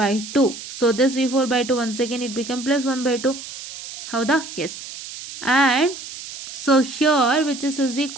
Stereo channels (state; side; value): noise; right; hiss, 12 dB below the sound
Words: So this V4/2 once again it become plus 1/2. ಹೌದಾ? Yes. And so here which is